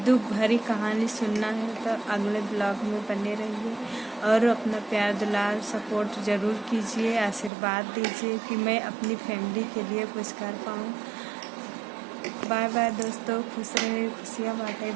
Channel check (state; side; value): drops out; left; at 7.5 s